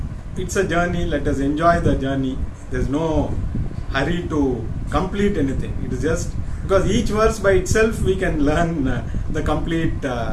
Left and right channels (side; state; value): both; identical; correlation 1.00